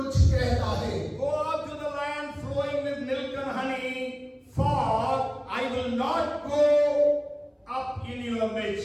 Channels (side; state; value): both; identical; correlation 1.00